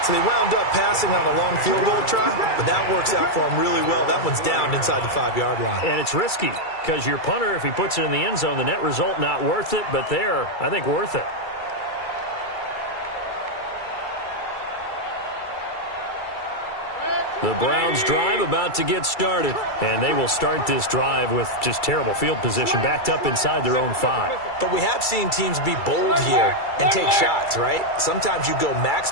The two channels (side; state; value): right; late; 2.3 ms